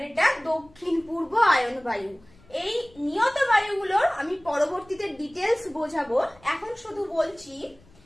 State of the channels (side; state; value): left; noise; rumble, 28 dB below the sound